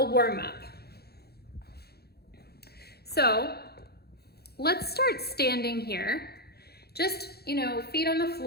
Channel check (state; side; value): late; right; 0.46 ms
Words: warm up. So let's start standing here. Just, feet on the